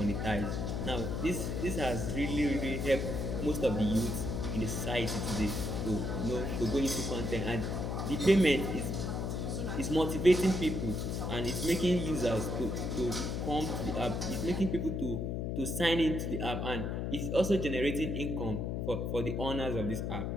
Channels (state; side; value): noise; left; hum, 1 dB below the sound